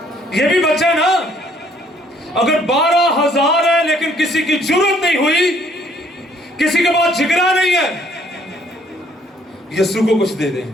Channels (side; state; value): both; normal; correlation 0.64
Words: ये भी बच्चा ना, अगर 12,000 है लेकिन किसी की जरूरत नहीं हुई, किसी के पास जिगरा नहीं है, यीशु को कुछ दे दें।